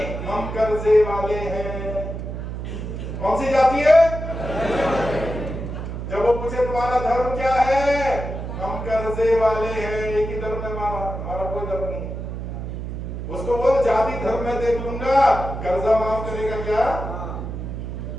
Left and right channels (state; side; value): noise; right; hum, 6 dB below the sound